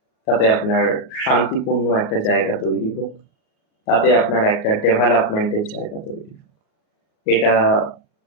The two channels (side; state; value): right; late; 37 ms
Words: তাতে আপনার শান্তিপূর্ণ একটা জায়গা তৈরি হোক, তাতে আপনার একটা ডেভেলপমেন্টের জায়গা তৈরি হোক। এটা